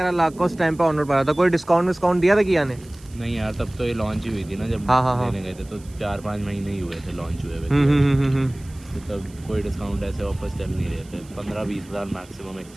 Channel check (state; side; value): noise; right; hiss, 25 dB below the sound